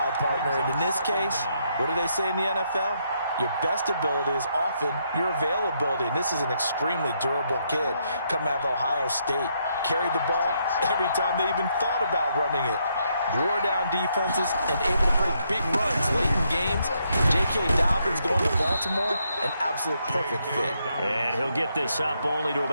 partner. And in this case, what do they say in the NFL? Your best ability is often your availability. And this is an extremely durable kid coming out of Ohio State. Carried the ball every time they even thought about running it. Wore down defenses and able to break big runs late in games. J.K. Dobbins going to Baltimore, an absolute perfect fit. And he'll get this up only to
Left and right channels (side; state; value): both; inverted; correlation -0.76